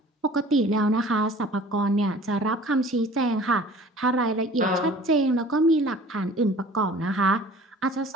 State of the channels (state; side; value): normal; both; correlation 0.47